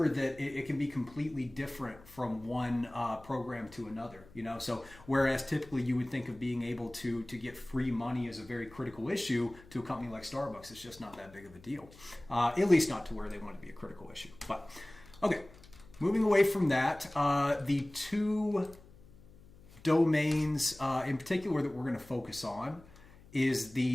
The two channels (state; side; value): noise; left; hum, 23 dB below the sound